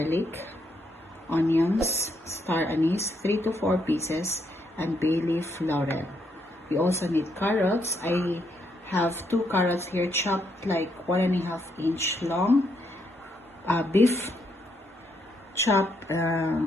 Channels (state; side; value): normal; both; correlation 0.76